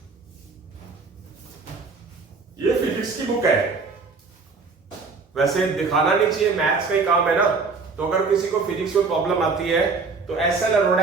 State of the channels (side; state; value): left; quieter; 4.5 dB